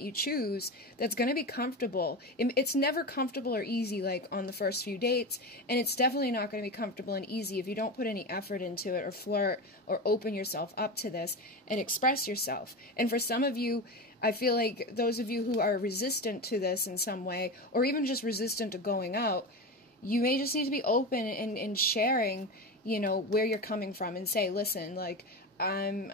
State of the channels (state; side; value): normal; both; correlation 0.22